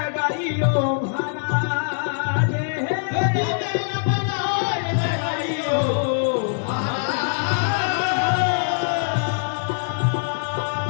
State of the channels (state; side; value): silent; right; digital silence